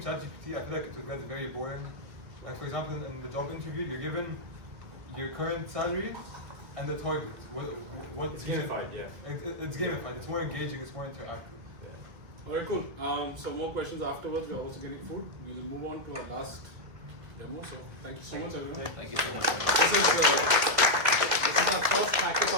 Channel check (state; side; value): late; left; 1.9 ms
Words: ChatGPT, I feel like it would get very boring. Like for example, in the job interview, you're given your current salary and the target. What It's gamified, yeah. It's gamified. It's more engaging. It's more interactive. All right, cool. Some more questions afterwards. We're also getting food. We'll move on to our last demo. So thank you so much, everyone. Thank you so much. This is our first